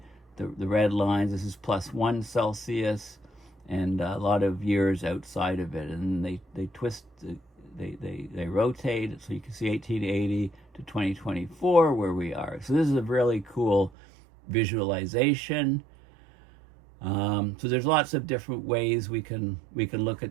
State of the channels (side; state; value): left; drops out; at 13.9 s